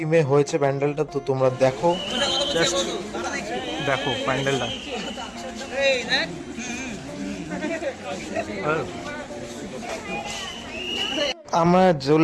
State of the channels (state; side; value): identical; both; correlation 1.00